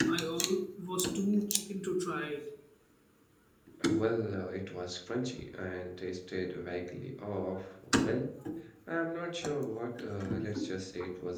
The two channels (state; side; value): identical; both; correlation 1.00